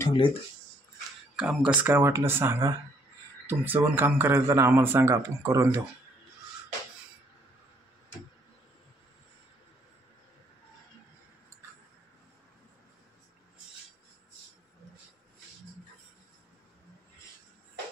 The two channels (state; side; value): normal; both; correlation 0.66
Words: ठेवलेत. काम कसं काय वाटलं सांगा. तुमचं पण काम करायचं तर आम्हाला सांगा, आपण करून देऊ.